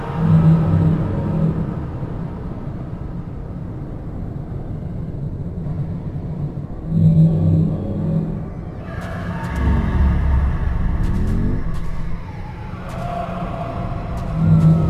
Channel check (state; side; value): identical; both; correlation 1.00